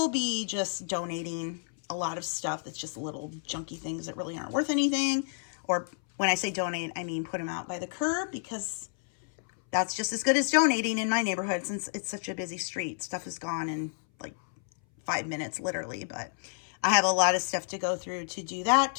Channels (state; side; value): silent; right; 58 dB below the other